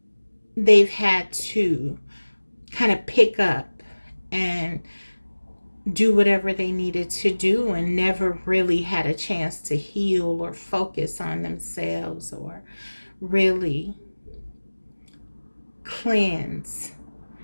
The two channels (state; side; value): inverted; both; correlation -1.00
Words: they've had to kind of pick up and do whatever they needed to do, and never really had a chance to heal or focus on themselves, or really cleanse.